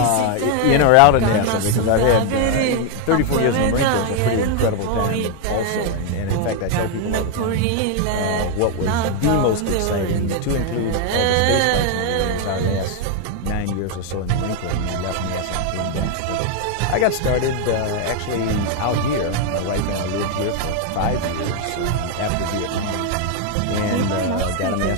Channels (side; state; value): both; different; correlation 0.01